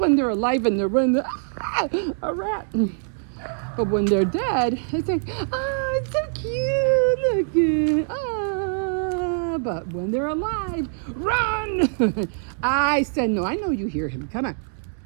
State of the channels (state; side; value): silent; left; digital silence